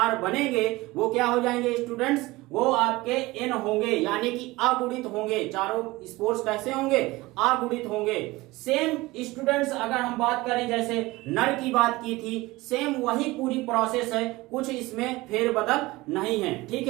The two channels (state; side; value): quieter; left; 20.4 dB